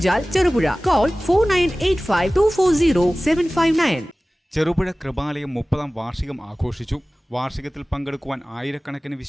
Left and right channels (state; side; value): normal; both; correlation 0.98